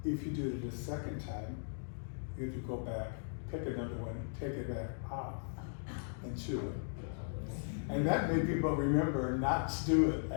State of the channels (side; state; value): right; silent; digital silence